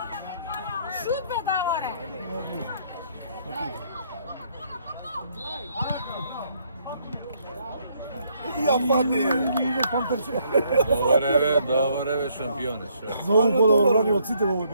Шут бе, Даворе! Ја пати! Иде Пантерче. Добре бе, шампионе. За ово подобро брани од сите во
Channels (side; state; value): both; inverted; correlation -0.69